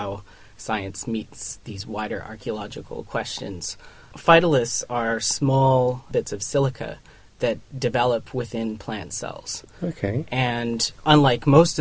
science meets these wider archaeological questions. Phytoliths are small bits of silica that develop within plant cells. Okay. And unlike most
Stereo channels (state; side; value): identical; both; correlation 1.00